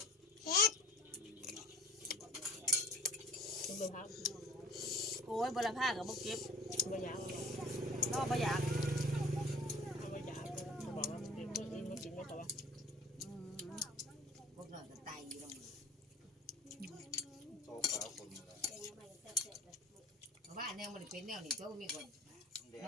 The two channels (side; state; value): both; normal; correlation 0.44